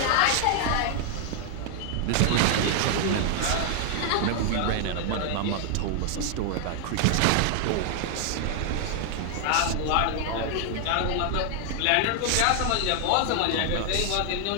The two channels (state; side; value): different; both; correlation 0.00